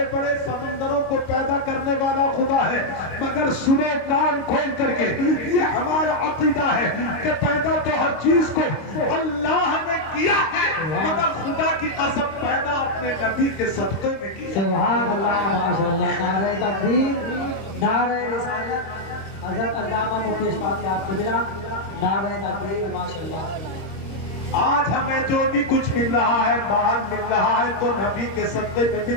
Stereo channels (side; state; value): right; late; 26 ms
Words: بڑے سمندروں کو پیدا کرنے والا خدا ہے. مگر سنو کان کھول کر کے, یہ ہمارا عقیدہ ہے کہ پیدا تو ہر چیز کو اللہ نے کیا ہے, مگر خدا کی قسم پیدا اپنے نبی کے صدقے میں کی. سبحان اللہ, ماشاءاللہ. نعرہ تکبیر, نعرہ رسالت. حضرت علامہ مفتی اشفاق یاد گجرا. نعرہ تکبیر, ماشاءاللہ. آج ہمیں جو بھی کچھ مل رہا ہے, مال مل رہا ہے تو نبی کے صدقے میں